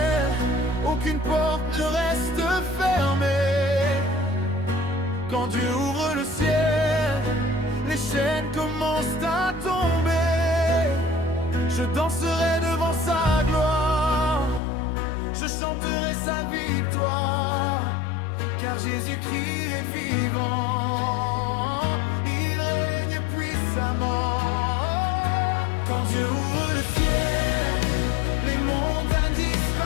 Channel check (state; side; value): drops out; right; at 14.6 s